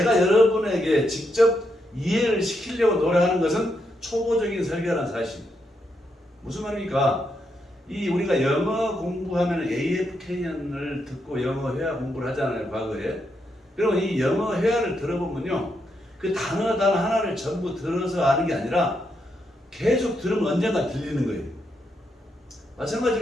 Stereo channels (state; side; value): normal; both; correlation 0.80